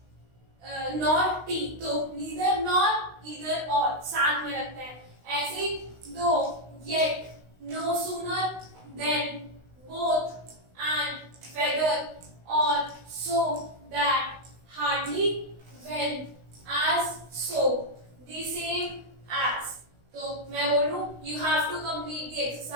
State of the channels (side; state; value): left; late; 16 ms